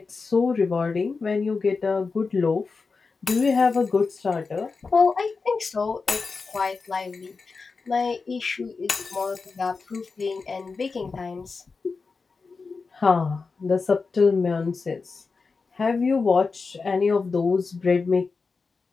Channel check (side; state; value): right; quieter; 4.5 dB